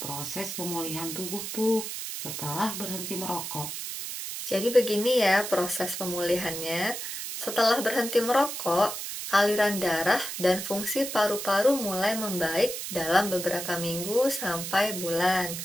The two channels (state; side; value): noise; right; hiss, 6 dB below the sound